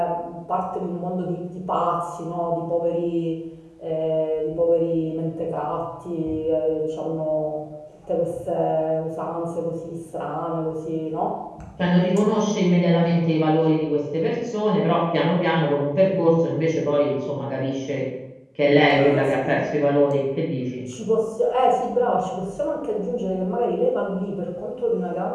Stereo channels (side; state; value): both; identical; correlation 1.00